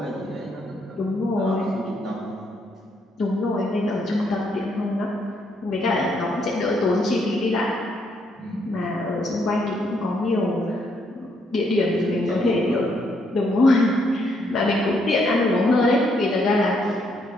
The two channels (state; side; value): normal; both; correlation 0.73